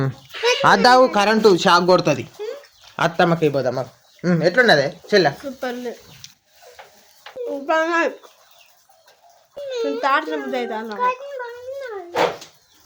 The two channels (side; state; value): both; identical; correlation 1.00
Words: అద్దావు, కరెంటు షాక్ కొడుతుంది. అత్తమ్మకి పోదమ్మా. ఎట్లున్నదే చెల్ల? సూపర్ తాడుతున్న బుద్ధి అవుతా